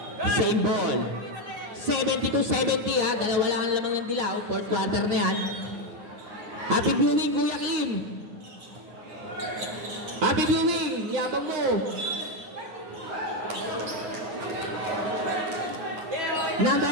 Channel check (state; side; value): late; left; 9.4 ms